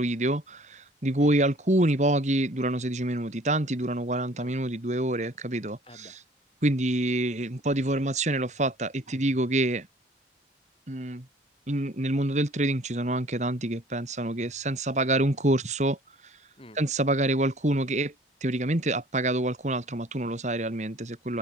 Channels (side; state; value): both; normal; correlation 0.53